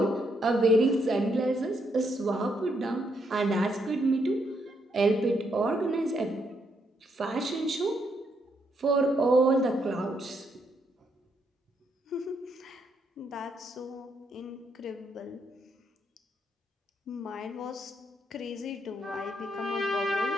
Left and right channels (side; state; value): both; normal; correlation 0.76